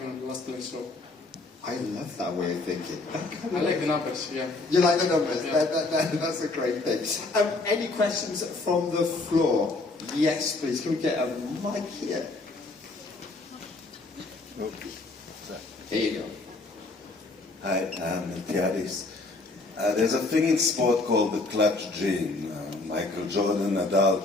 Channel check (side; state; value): right; quieter; 3.3 dB